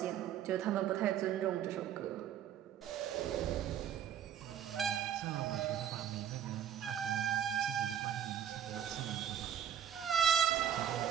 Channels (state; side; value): quieter; left; 9.6 dB